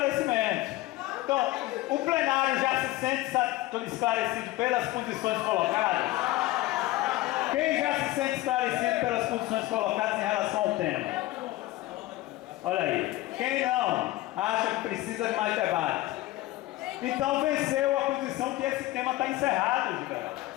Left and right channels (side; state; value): right; quieter; 17.6 dB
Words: Então, o plenário já se sente esclarecido pelas posições colocadas? Quem já se sente esclarecido pelas posições colocadas em relação ao tema? Olha aí. Quem não acha que precisa de mais debate? Então venceu a posição que esse tema está encerrado, Giveraldo.